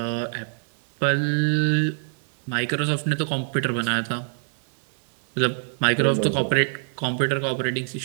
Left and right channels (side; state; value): left; silent; digital silence